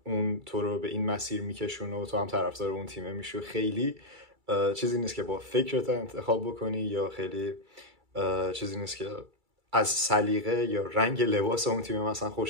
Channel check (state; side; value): late; left; 2.3 ms